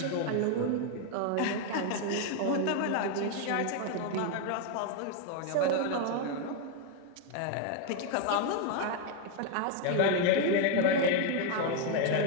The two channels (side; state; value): both; different; correlation 0.01